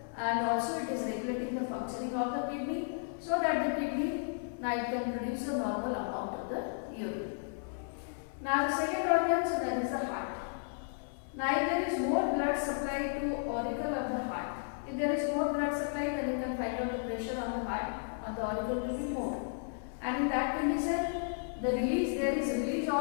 and also it is regulating the functioning of the kidney, so that the kidney now it can produce a normal amount of the urine. Now the second organ, so that is the heart. Now if there is more blood supply to auricle of the heart, if there is more blood supply, then you can find out the pressure on the heart or the auricle will be more. And in that condition, there is release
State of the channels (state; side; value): silent; right; 55 dB below the other